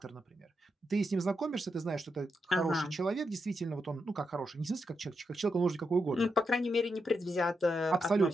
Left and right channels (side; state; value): both; normal; correlation 0.84